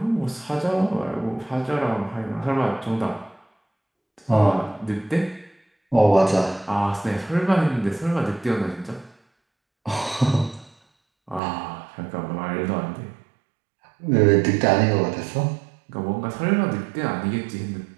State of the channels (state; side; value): drops out; left; at 11.4 s